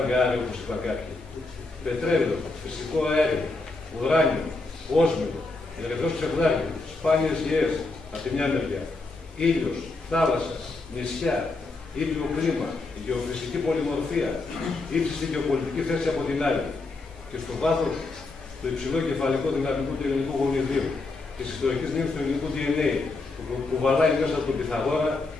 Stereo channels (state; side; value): quieter; right; 3.4 dB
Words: όπως είπα κάποιοι. Πετρέλαιο, φυσικό αέριο, ουράνιο, όσμιο, ερυθρός ψευδάκι, σπάνιες γεές από τη μια μεριά, ήλιος, θάλασσα, νησιά, ήπιο κλίμα, γεωφυσική πολυμορφία, ύψιστη γεωπολιτική θέση από την άλλη. Και στο βάθος το υψηλό κεφαλικό δυναμικό του ελληνικού γονιδίου, της ιστορικής μνήμης του ελληνικού DNA, που βαλάει μέσα από τον Πυθαγόρα,